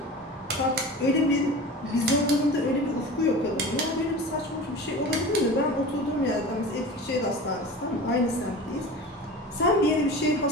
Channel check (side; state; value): both; normal; correlation 0.34